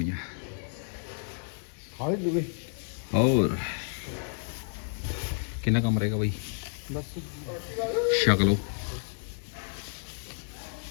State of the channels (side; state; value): right; silent; 57 dB below the other